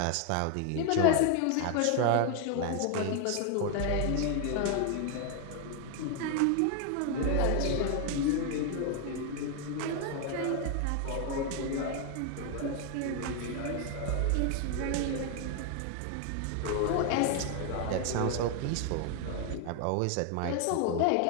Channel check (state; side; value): different; both; correlation 0.01